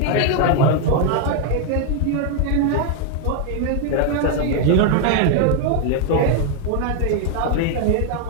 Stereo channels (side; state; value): both; different; correlation 0.00